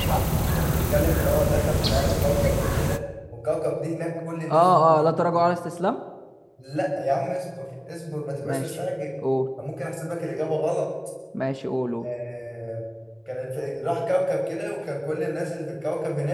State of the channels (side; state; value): both; identical; correlation 1.00